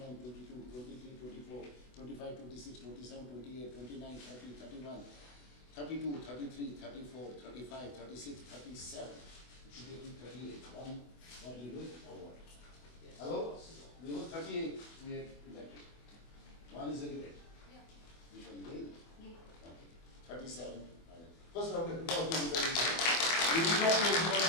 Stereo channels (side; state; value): right; late; 24 ms